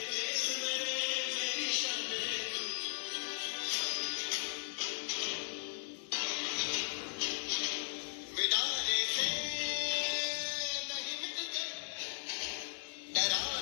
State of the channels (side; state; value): right; silent; digital silence